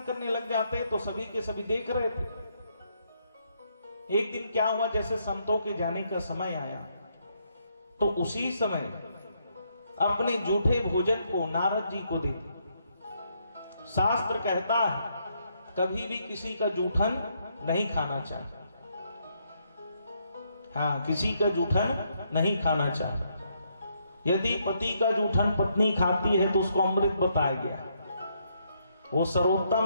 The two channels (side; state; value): both; inverted; correlation -0.74